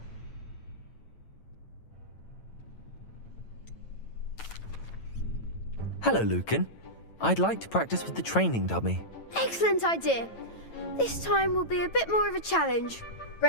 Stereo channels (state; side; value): late; right; 9.0 ms